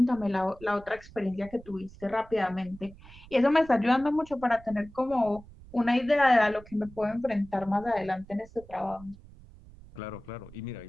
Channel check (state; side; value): noise; right; rumble, 20 dB below the sound